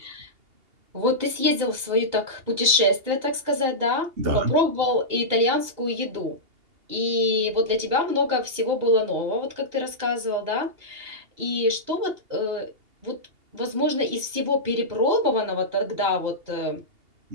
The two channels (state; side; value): late; left; 2.8 ms